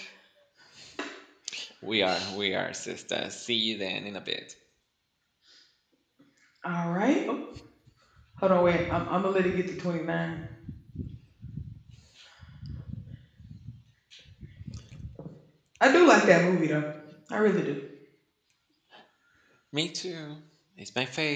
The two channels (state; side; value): identical; both; correlation 1.00